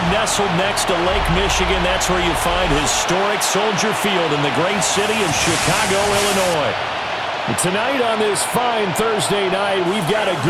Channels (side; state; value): both; identical; correlation 1.00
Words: nestled next to Lake Michigan. That's where you find historic Soldier Field in the great city of Chicago, Illinois. Tonight on this fine Thursday night, we've got a